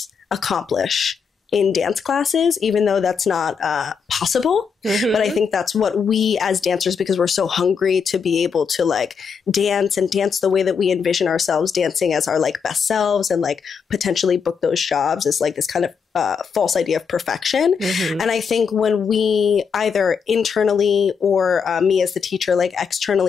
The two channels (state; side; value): quieter; right; 6.2 dB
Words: accomplish in dance classes, even though that's not possible. But I think that's what we as dancers, because we're so hungry to be able to like dance and dance the way that we envision ourselves dancing as our like best selves, and like potentially book those jobs, is like this kind of false idea of perfection. And I think when we either internally or me as the teacher, like